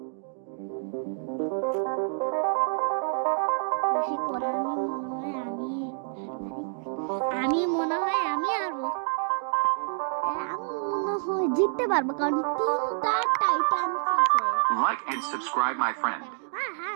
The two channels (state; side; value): silent; left; digital silence